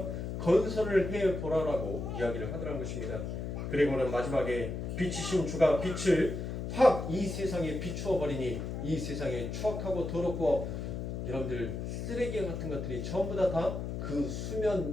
건설을 해보라라고 이야기를 하더란 것입니다. 그리고는 마지막에 빛이신 주가 빛을 확 이 세상에 비추어 버리니 이 세상에 추악하고 더럽고 여러분들 쓰레기 같은 것들이 전부 다 그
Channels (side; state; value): left; noise; hum, 4 dB below the sound